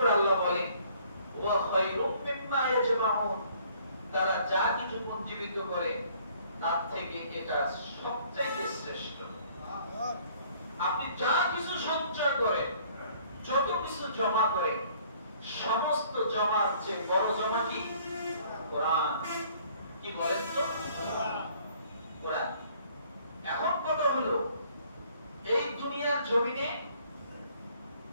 আল্লাহ বলেন ওয়া খায়রুম মিম্মা ইয়াজমাউন, তারা যা কিছু পুঞ্জীবিত করে তার থেকে এটা সবচেয়ে শ্রেষ্ঠ। আপনি যা কিছু সঞ্চয় করেন, যত কিছু জমা করেন, সমস্ত জমার চেয়ে বড় জমা কি? কোরআন। কি বলেন তো? কোরআন। এখন কথা হলো, এই দুনিয়ার জমিনে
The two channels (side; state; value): both; inverted; correlation -0.59